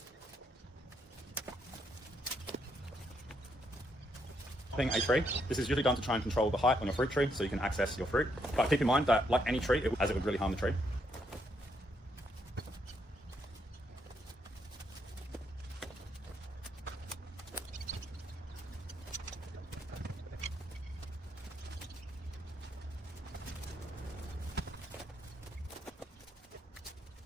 A tree. This is usually done to try and control the height on your fruit tree so you can access your fruit. But keep in mind that, like any tree, it would really harm the tree.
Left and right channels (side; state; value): both; normal; correlation 0.75